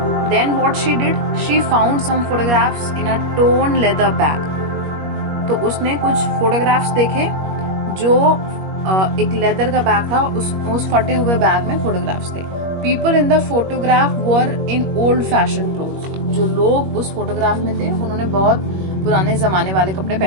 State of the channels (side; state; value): left; late; 21 ms